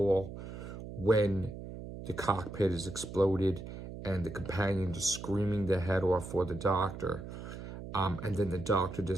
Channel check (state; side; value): noise; right; hum, 10 dB below the sound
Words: when the cockpit is exploded and the companions are screaming their head off for the Doctor. And then the Doctor